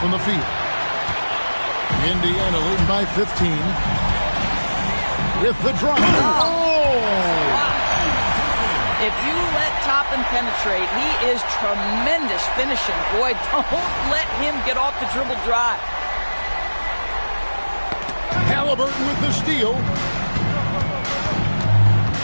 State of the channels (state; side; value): inverted; both; correlation -1.00